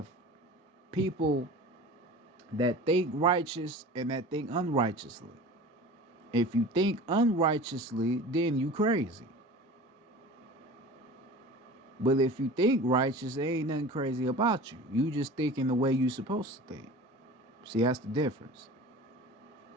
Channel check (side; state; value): both; normal; correlation 0.38